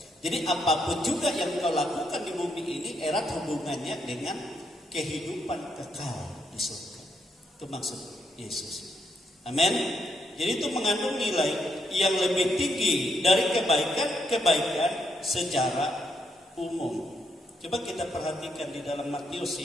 Jadi apapun juga yang kau lakukan di bumi ini erat hubungannya dengan kehidupan kekal di surga. Itu maksud Yesus. Amin. Jadi itu mengandung nilai yang lebih tinggi dari kebaikan secara umum. Coba kita perhatikan di dalam Matius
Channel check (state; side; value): normal; both; correlation 0.77